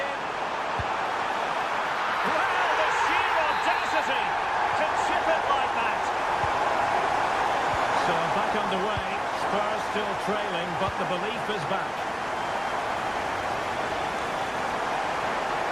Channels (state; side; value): identical; both; correlation 1.00